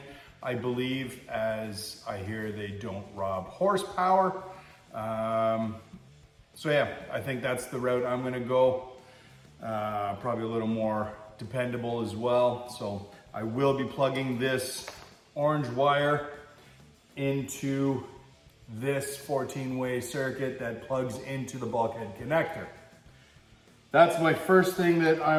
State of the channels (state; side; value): identical; both; correlation 1.00